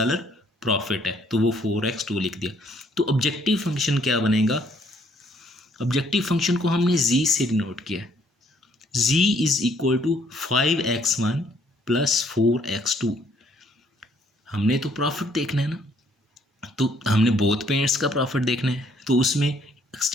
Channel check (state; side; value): normal; both; correlation 0.65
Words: प्रॉफिट है, तो वो 4x2 लिख दिया। तो ऑब्जेक्टिव फंक्शन क्या बनेगा, ऑब्जेक्टिव फंक्शन को हमने z से डिनोट किया, z is equal to 5x1 plus 4x2। हमने तो प्रॉफिट देखना है ना, तो हमने बोथ पेंट्स का प्रॉफिट देखना है, तो उसमें